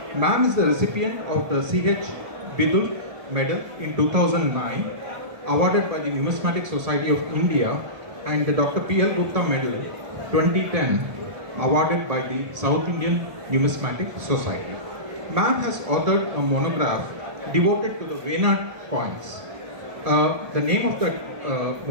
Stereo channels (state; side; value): late; left; 1.7 ms